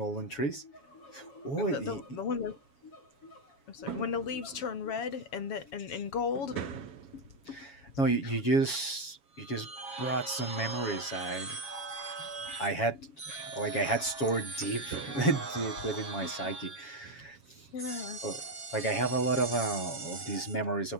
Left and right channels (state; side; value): late; right; 7.2 ms